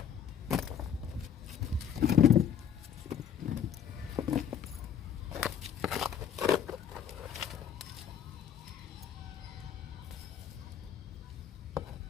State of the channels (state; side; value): quieter; right; 8.7 dB